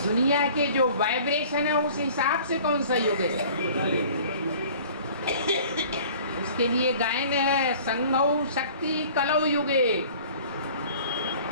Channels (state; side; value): inverted; both; correlation -0.48